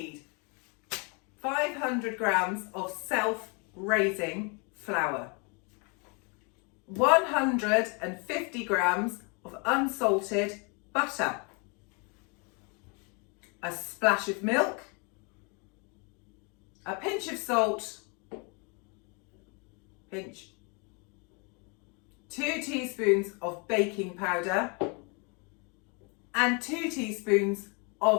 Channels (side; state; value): right; quieter; 33.4 dB